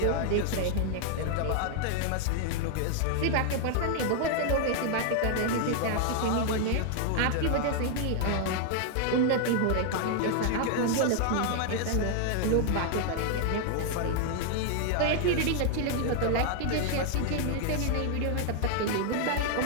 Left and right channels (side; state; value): both; different; correlation 0.00